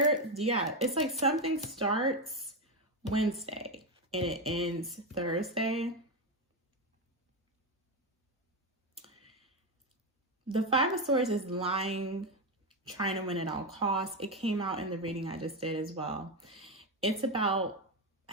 like something starts Wednesday and it ends Thursday. The 5 of Swords is lying, trying to win at all costs. It came out in the reading I just did as well. It's about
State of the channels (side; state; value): both; normal; correlation 0.10